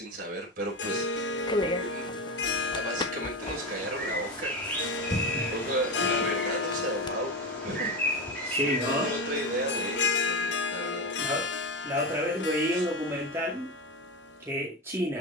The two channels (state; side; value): normal; both; correlation 0.19